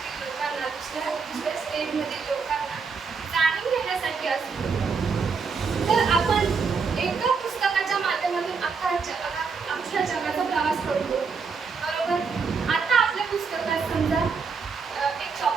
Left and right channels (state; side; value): quieter; left; 5.3 dB